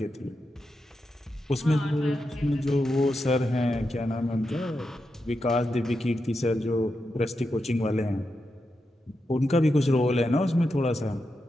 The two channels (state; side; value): normal; both; correlation 0.87